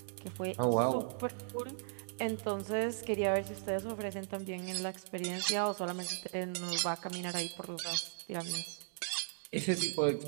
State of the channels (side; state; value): left; silent; digital silence